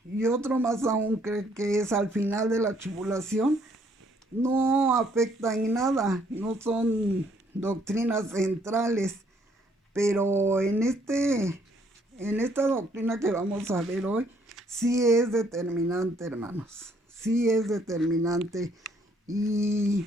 y otro más aún cree que es al final de la tribulación, no afecta en nada, no son doctrinas centrales, pero en esta doctrina que vamos a ver hoy, sí es determinante, hermanos, sí es determinante.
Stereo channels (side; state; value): both; normal; correlation 0.66